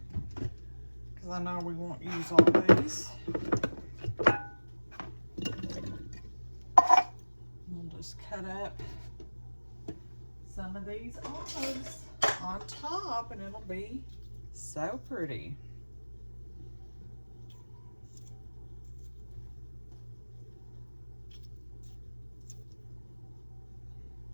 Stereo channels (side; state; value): both; inverted; correlation -1.00